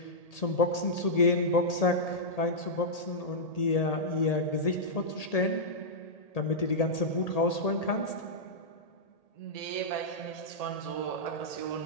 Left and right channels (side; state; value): right; late; 1.8 ms